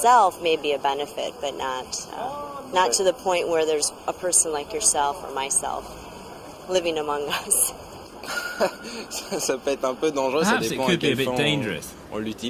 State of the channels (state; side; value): identical; both; correlation 1.00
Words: may be a benefit, but not to the point where there's a person like yourself or myself living among us. Ça peut être un peu dangereux, ça Perhaps it dépend à could be a quel bit fin dangerous. on